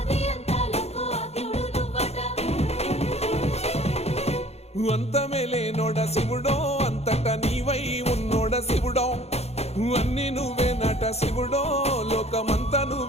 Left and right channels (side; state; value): right; late; 0.31 ms